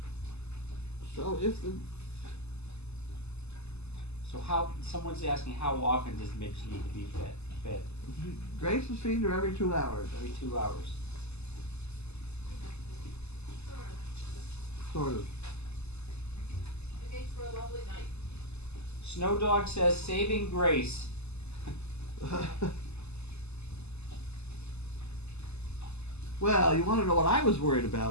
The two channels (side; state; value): right; late; 0.80 ms